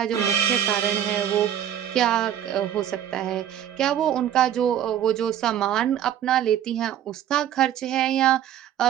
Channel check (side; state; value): left; quieter; 10.6 dB